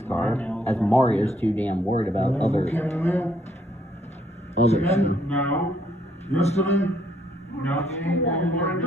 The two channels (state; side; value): normal; both; correlation 0.69